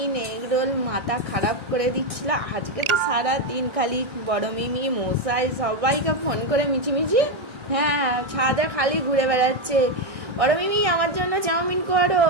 এগরোল মাথা খারাপ করে দিচ্ছিল। আজকে তো সারা দিন খালি বড় মিমি মশাই সবাইকে ফোন করে মিছিমিছি, হ্যাঁ ছাদে খালি ঘুরে বেড়াচ্ছে। বড় মিমি আমার জন্য চাউমিন করো,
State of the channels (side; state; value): left; late; 1.6 ms